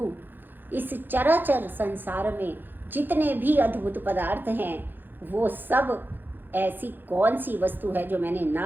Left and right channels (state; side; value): late; left; 0.093 ms